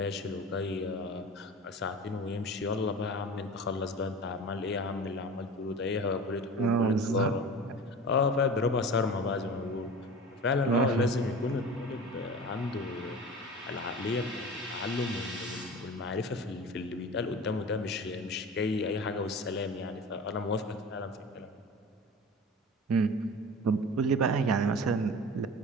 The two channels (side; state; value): both; normal; correlation 0.36